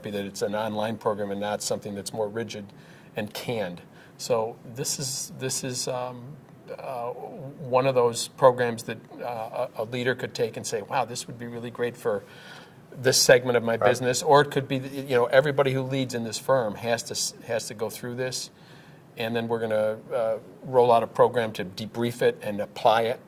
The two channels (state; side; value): identical; both; correlation 1.00